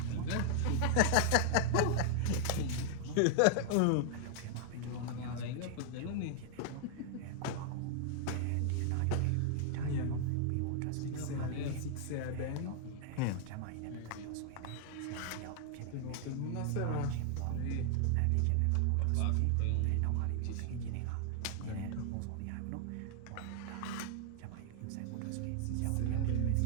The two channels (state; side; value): different; both; correlation 0.00